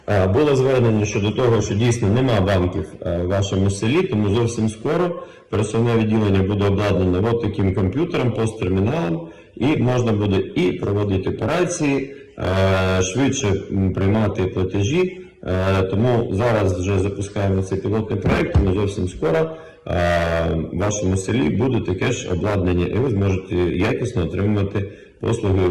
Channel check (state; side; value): identical; both; correlation 1.00